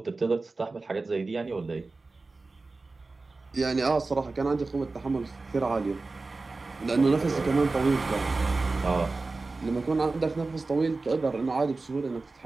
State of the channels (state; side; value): quieter; left; 3.6 dB